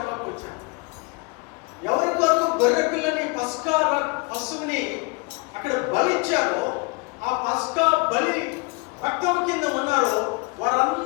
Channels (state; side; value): quieter; right; 28.3 dB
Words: వచ్చాడు. ఎవరి కొరకు గొర్రె పిల్లని పశువుని అక్కడ బలిచ్చారో ఆ పస్కా బలి రక్తం కింద ఉన్నారో